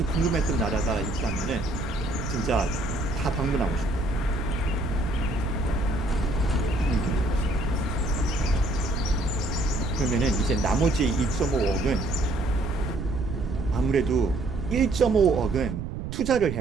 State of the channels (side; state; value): right; noise; rumble, 6 dB below the sound